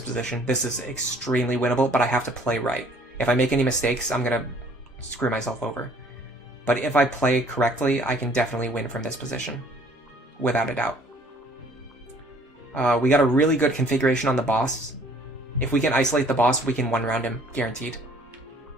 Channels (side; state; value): both; normal; correlation 0.57